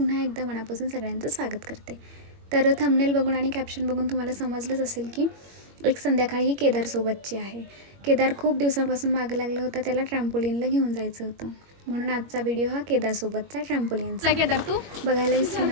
एकदा मनापासून सगळ्यांचं स्वागत करते. तर थंबनेल बघून आणि कॅप्शन बघून तुम्हाला समजलंच असेल की एक संध्याकाळी ही केदारसोबतची आहे. केदार खूप दिवसांपासून मागं लागलं होतं, त्याला ट्रॅम्पोलिनला घेऊन जायचं होतं, म्हणून आजचा व्हिडिओ हा केदारसोबतचा ट्रॅम्पोलिनचा. केदार तू बघायला विसरू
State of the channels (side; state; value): left; late; 21 ms